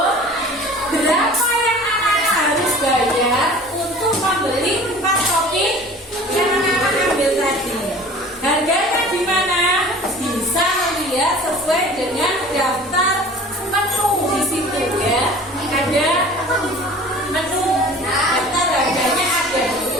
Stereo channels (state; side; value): normal; both; correlation 0.44